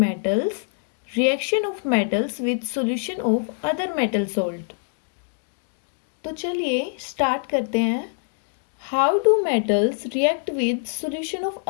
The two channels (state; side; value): silent; right; 62 dB below the other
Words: reaction of metals with solution of other metal salt. तो चलिए स्टार्ट करते हैं। How do metals react with solution of